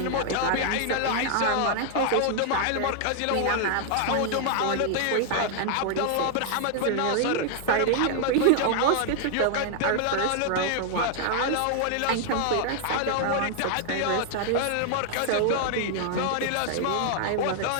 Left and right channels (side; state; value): both; different; correlation 0.00